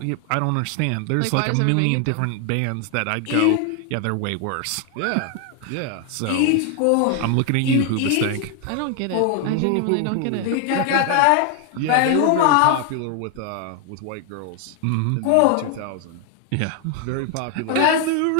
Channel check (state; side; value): different; both; correlation 0.00